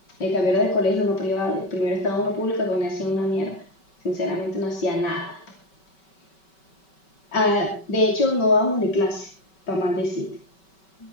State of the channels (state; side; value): late; right; 5.3 ms